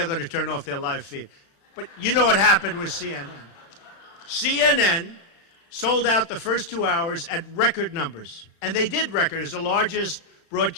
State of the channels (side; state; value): right; late; 35 ms